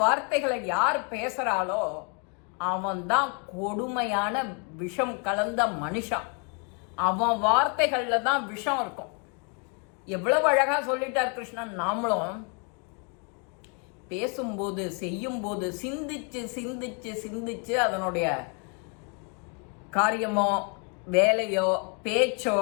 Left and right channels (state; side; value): quieter; right; 37.2 dB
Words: வார்த்தைகளை யார் பேசுறாளோ அவன் தான் கொடுமையான விஷம் கலந்த மனுஷன். அவன் வார்த்தைகள்ல தான் விஷம் இருக்கும். எவ்வளவு அழகா சொல்லிட்டார் கிருஷ்ணன். நாமளும் பேசும்போது, செய்யும்போது சிந்திச்சு சிந்திச்சு சிந்திச்சு அதனுடைய காரியமோ வேலையோ பேச்சோ